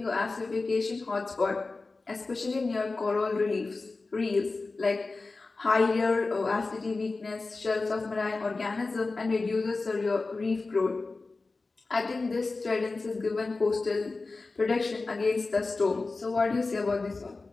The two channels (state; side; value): quieter; right; 3.7 dB